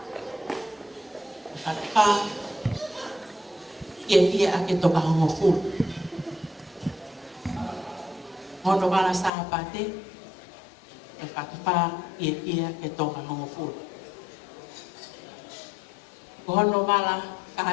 Whakapa ia ake toka hongo fu. Hono wala sa pate. Whakapa ia ake toka hongo fu. Hono wala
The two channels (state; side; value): drops out; right; at 9.3 s